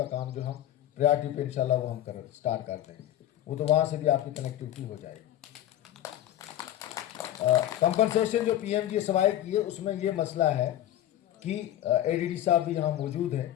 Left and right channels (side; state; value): right; quieter; 12.6 dB